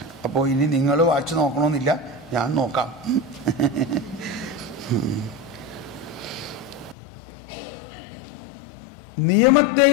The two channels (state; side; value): drops out; right; at 7.0 s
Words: അപ്പോൾ ഇനി നിങ്ങൾ വാച്ച് നോക്കണമെന്നില്ല, ഞാൻ നോക്കാം.